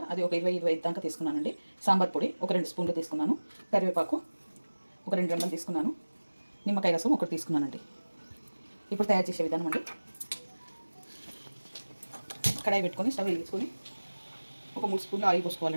అది ఒక 20-25 దాకా తీసుకున్నానండి. సాంబార్ పొడి ఒక 2 స్పూన్లు తీసుకున్నాను, కరివేపాకు ఒక 2 రెమ్మలు తీసుకున్నాను, నిమ్మకాయ రసం ఒకటి తీసుకున్నానండి. ఇప్పుడు తయారు చేసే విధానం అండి: కడాయి పెట్టుకొని స్టవ్ వెలిగించుకొని ఒక 3 స్పూన్లు ఆయిల్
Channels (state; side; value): inverted; both; correlation -1.00